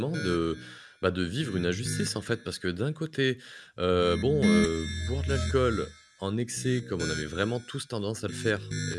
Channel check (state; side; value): identical; both; correlation 1.00